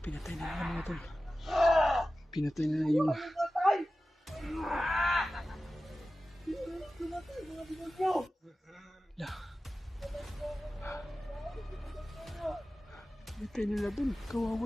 pinatay na nila mga tol. Pinatay na yung... Hala. Pinatay nila dun.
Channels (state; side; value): normal; both; correlation 0.95